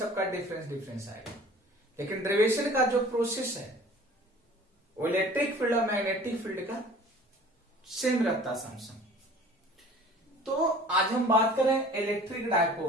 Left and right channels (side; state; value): both; normal; correlation 0.47